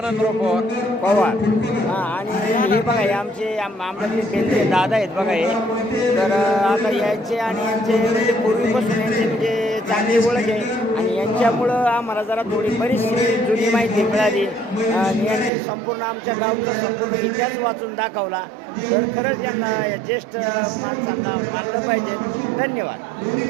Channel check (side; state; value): left; drops out; at 15.5 s